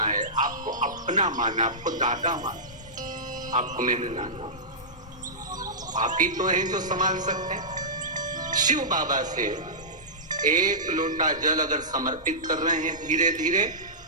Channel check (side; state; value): both; normal; correlation -0.17